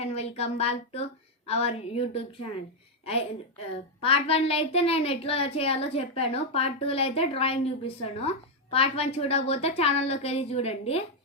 and welcome back to our YouTube channel. Part 1లో అయితే నేను ఎట్లా చేయాలో చెప్పాను. పార్ట్ 2లో అయితే డ్రాయింగ్ చూపిస్తాను. పార్ట్ 1 చూడకపోతే ఛానల్లోకి వెళ్ళి చూడండి.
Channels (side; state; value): both; normal; correlation 0.00